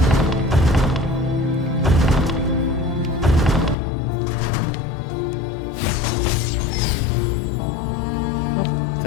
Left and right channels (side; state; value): right; drops out; at 3.8 s